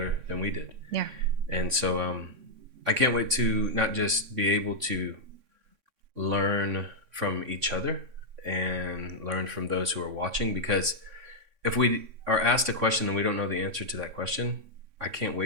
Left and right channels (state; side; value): late; left; 3.6 ms